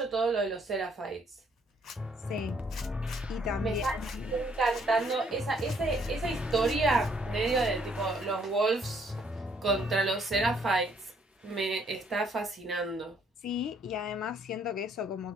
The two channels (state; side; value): normal; both; correlation 0.67